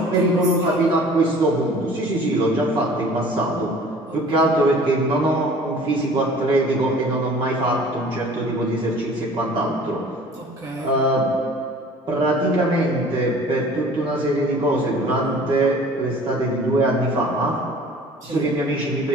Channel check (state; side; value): normal; both; correlation 0.48